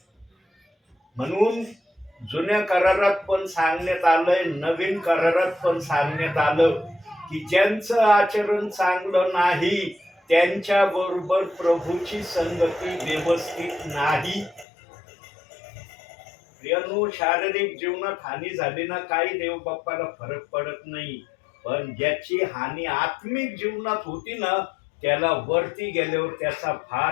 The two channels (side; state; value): right; drops out; at 14.7 s